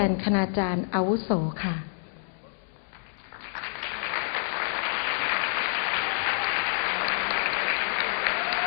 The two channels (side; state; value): right; silent; digital silence